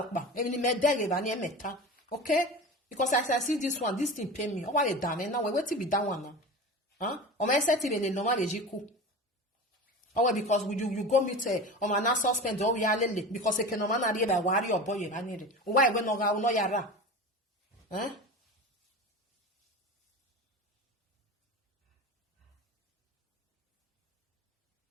Okay? Because as I see this one, this thing pay me. Oh, what they done? Now wait till be that one now. Huh? Or my Settie le normal ejiku. Oh, because you go meet on my suspend or we are lele because they can no man by worry or boy I need it. Why we no ga no yara? Huh?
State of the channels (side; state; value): both; normal; correlation 0.30